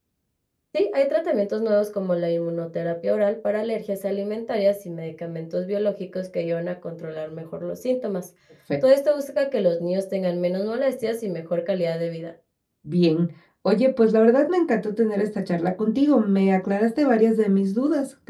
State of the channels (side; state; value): both; identical; correlation 1.00